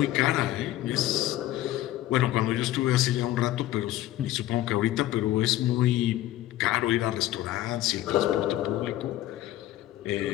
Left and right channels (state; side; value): quieter; right; 14.6 dB